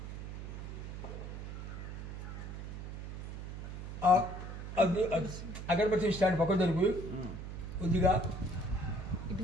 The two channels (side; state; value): right; noise; hum, 8 dB below the sound